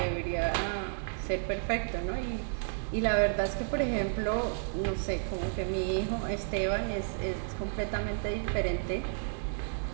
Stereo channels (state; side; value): silent; left; digital silence